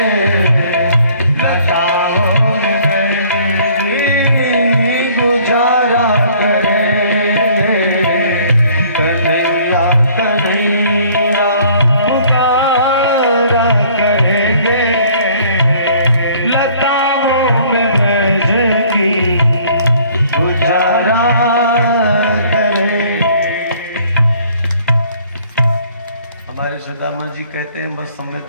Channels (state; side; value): inverted; both; correlation -0.57